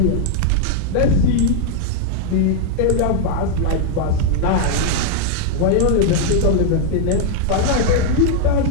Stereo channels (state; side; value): different; both; correlation 0.00